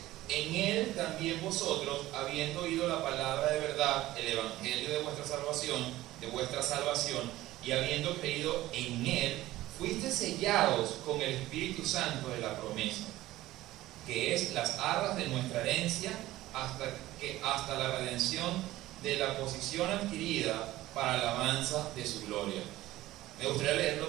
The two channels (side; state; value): left; quieter; 16.3 dB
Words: en Él también vosotros, habiendo oído la palabra de verdad, el evangelio de vuestra salvación, y habiendo creído en Él, fuiste sellados con el Espíritu Santo de la promesa, que es las arras de nuestra herencia, hasta la redención de la posición adquirida para la alabanza de su gloria. Me gustaría leerlo